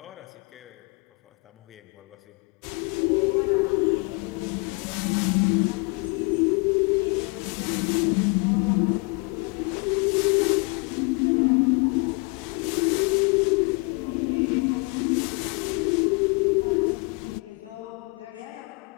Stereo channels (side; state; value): right; quieter; 29.3 dB